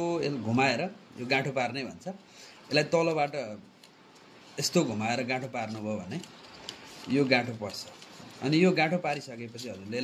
घुमाएर यो गाँठो पार्ने भन्छ। यसलाई तलबाट यस्तो घुमाएर गाँठो पार्नुभयो भने यो गाँठो पर्छ। अनि यो गाँठो पारिसकेपछि हजुरले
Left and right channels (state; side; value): identical; both; correlation 1.00